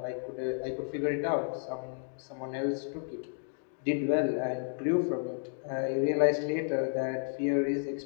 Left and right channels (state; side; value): silent; right; 56 dB below the other